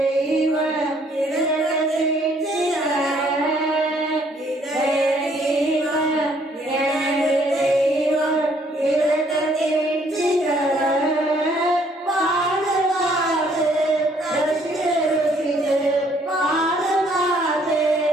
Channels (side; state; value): both; normal; correlation 0.65